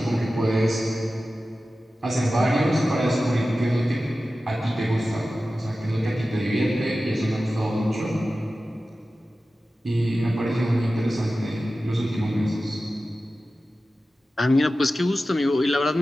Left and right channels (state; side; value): normal; both; correlation 0.94